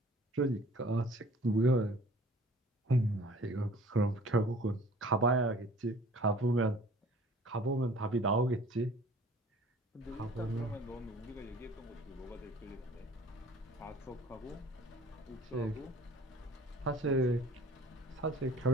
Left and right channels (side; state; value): both; normal; correlation 0.50